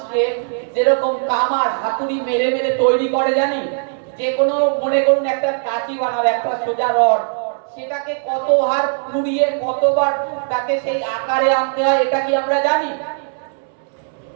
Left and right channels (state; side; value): silent; left; digital silence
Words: যেরকম কামার হাতুড়ি মেরে মেরে তৈরি করে, জানি যে কোনো, মনে করুন একটা কাঁচি বানাবে, একটা সোজা রড, সেটাকে কতবার পুড়িয়ে কতবার তাকে সেই আকারে আনতে হয়, এটা কি আমরা জানি?